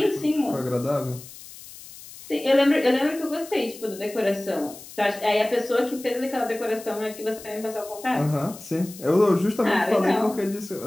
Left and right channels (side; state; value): left; noise; hiss, 17 dB below the sound